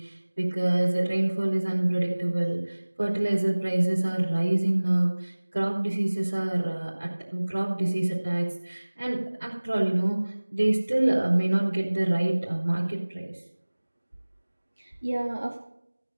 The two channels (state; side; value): inverted; both; correlation -1.00